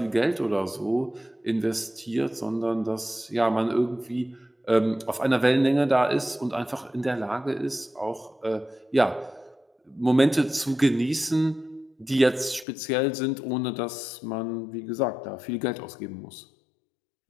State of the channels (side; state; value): right; drops out; at 12.7 s